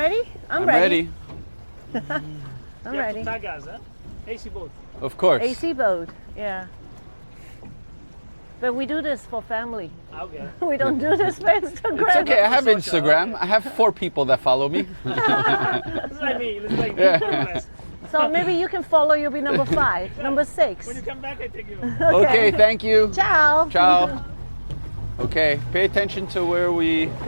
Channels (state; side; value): inverted; both; correlation -1.00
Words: I'm ready. I'm You have ready. to tag us, huh? AC boat. Of course. AC boat, yeah. But we do this for family. Okay. We don't do this for Instagram. It's okay. I have Social, Instagram. I have 4 people that follow me. It's like me. It's like me. Yeah. So maybe you can follow, you'll be number 5, number 6. When you come back, I take you. Okay, thank you. Ciao. Ciao. Okay, pay attention to where we.